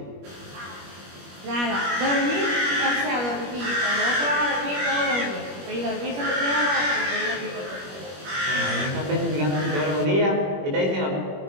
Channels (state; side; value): late; left; 21 ms